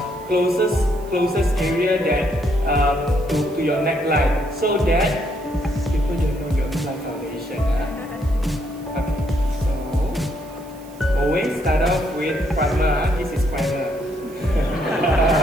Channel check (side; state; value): right; noise; hiss, 24 dB below the sound